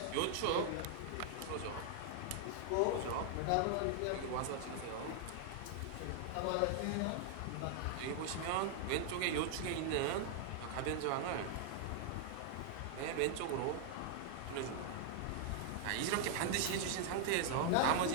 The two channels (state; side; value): different; both; correlation 0.00